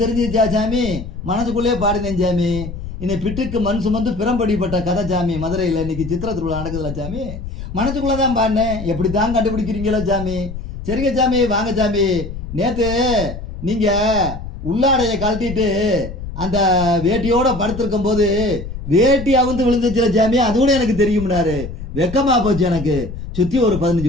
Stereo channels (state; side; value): noise; left; rumble, 9 dB below the sound